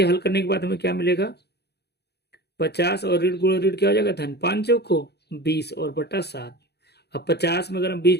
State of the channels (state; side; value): late; right; 0.48 ms